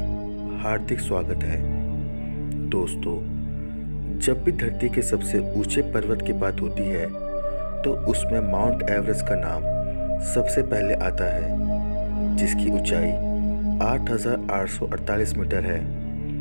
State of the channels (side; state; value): both; inverted; correlation -1.00